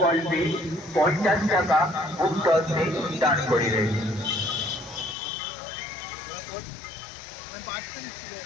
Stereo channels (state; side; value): drops out; right; at 5.2 s